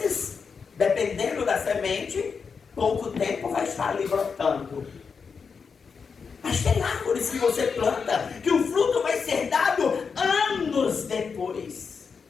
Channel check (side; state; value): right; quieter; 5.6 dB